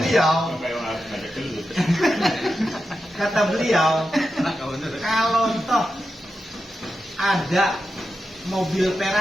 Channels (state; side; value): normal; both; correlation 0.89